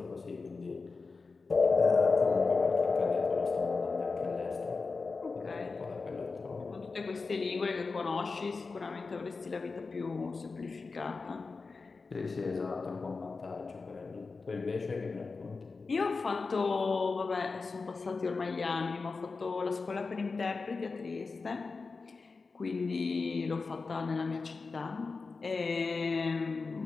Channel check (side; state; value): right; quieter; 4.3 dB